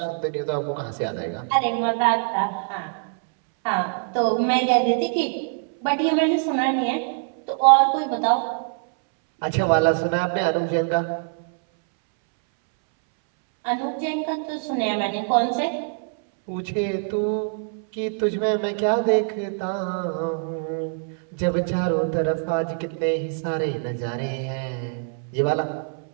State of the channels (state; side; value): silent; left; 63 dB below the other